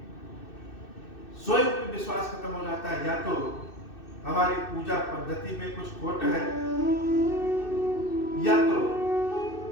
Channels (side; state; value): right; late; 2.6 ms